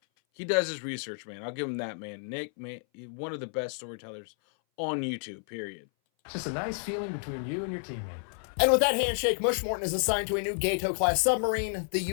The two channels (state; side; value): silent; right; 57 dB below the other